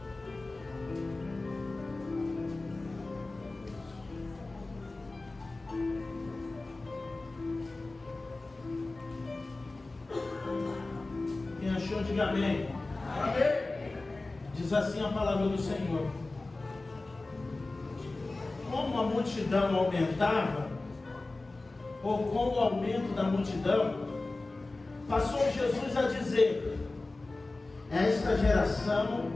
Quem achou, diga amém. Amém. Diz assim a palavra do Senhor: como a multidão aumentava, ou com o aumento da multidão, passou Jesus a dizer: esta geração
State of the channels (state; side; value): quieter; right; 3.2 dB